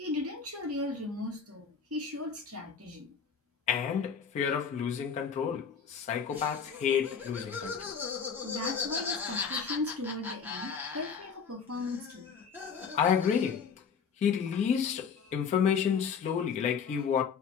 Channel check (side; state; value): right; quieter; 6.4 dB